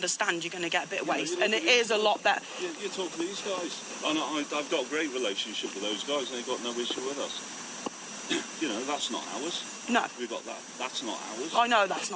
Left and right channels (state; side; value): identical; both; correlation 1.00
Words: You're going to get a bit of waste, and it is a lot better. You talk to these guys, and I've got a great relationship with those guys, and they've got no issue with us. You know, that's not ours. No, We've got that. That's not ours. I know that's